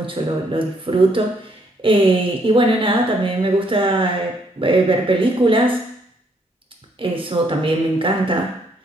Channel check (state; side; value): normal; both; correlation 0.70